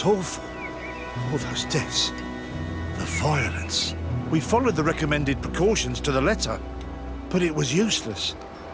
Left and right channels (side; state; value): both; identical; correlation 1.00